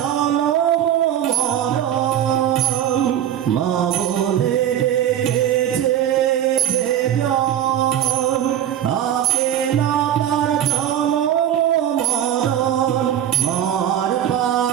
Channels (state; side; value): quieter; left; 10.6 dB